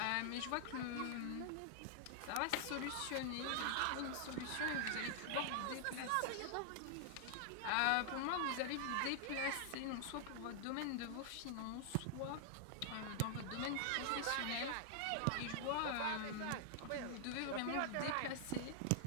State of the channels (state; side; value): different; both; correlation -0.01